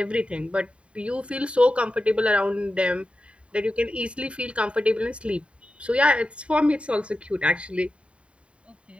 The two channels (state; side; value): late; left; 0.060 ms